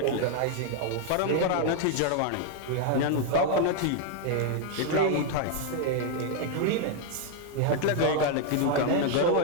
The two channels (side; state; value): both; different; correlation 0.00